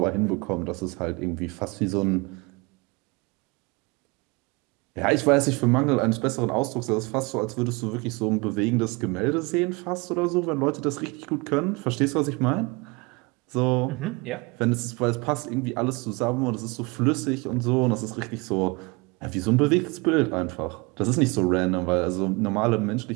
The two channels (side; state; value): left; quieter; 27.1 dB